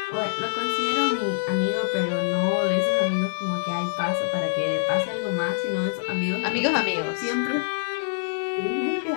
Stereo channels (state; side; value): silent; right; digital silence